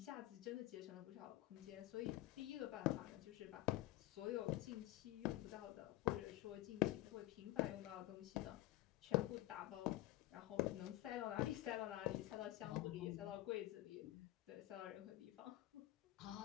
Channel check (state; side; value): quieter; right; 16.5 dB